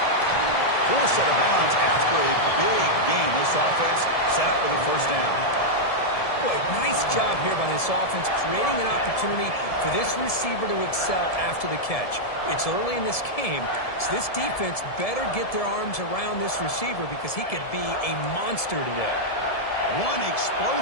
Forced out of bounds after a big gain. This offense set up with a 1st down. Boy, nice job here by this offense, creating an opportunity for this receiver to excel after the catch. It's early in this game, so this defense better get their arms around this receiver because he could be a monster today. One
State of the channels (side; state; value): right; late; 1.7 ms